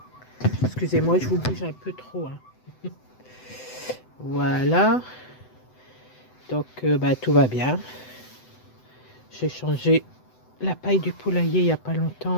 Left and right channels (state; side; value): late; right; 7.9 ms